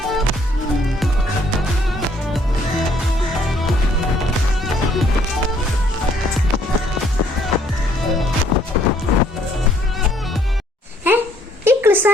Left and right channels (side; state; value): both; normal; correlation 0.65